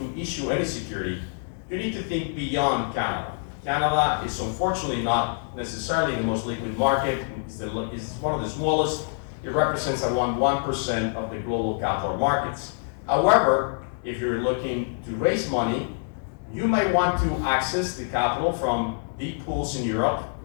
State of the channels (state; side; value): silent; right; digital silence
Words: issue any security, you need to think beyond Canada. Canada is unfortunately not necessarily the most liquid market. It's one of the smallest. It represents around 1% of the global capital markets. However, if you're looking to raise money, you might want to access the capital from deep pools in Europe